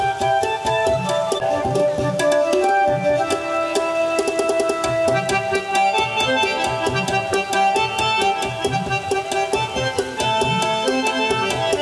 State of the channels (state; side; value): identical; both; correlation 1.00